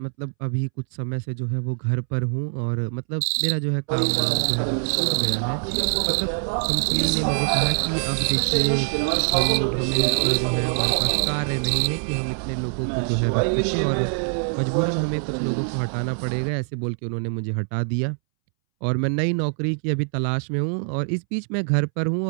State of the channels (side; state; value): left; silent; 63 dB below the other